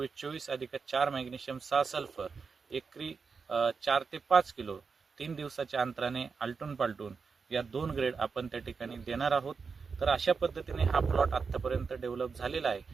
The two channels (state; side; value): quieter; left; 5.2 dB